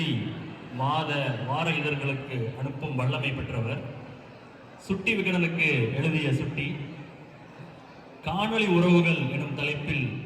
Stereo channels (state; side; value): identical; both; correlation 1.00